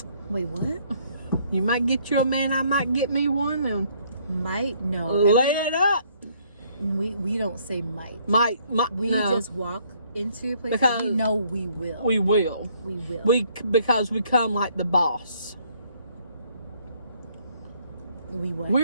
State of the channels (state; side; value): inverted; both; correlation -0.65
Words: Wait, what? You might get you a man. I might get me one, and Might? No. lay it up. We don't say might. Might. We no. just walk into a place Because that we know we will. We will. We will. Because we come like the boss. We what?